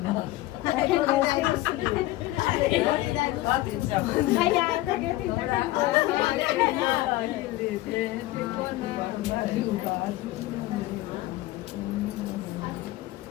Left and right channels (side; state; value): right; quieter; 17.3 dB